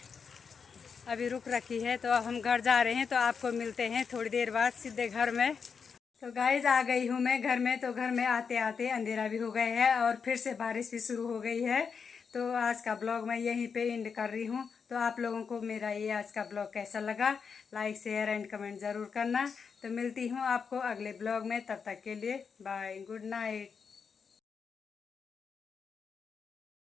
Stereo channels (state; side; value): quieter; right; 6.0 dB